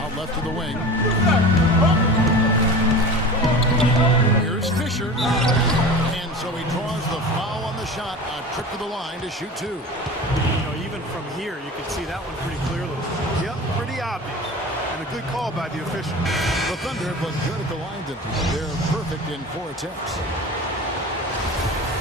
out left of the wing. Here's Fisher. And so he draws the foul on the shot. A trip to the line to shoot 2. You know, even from here, you can see that one pretty clearly. Yep, pretty obvious. And a good call by the official. The Thunder have looked good at the line. They're perfect in 4 attempts.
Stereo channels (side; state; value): both; normal; correlation 0.35